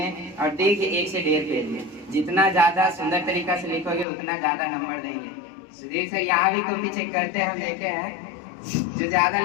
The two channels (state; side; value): drops out; right; at 4.0 s